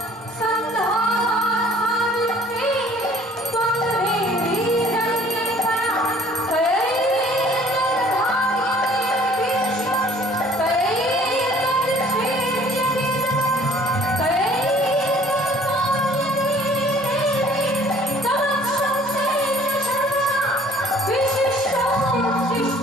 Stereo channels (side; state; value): both; normal; correlation 0.55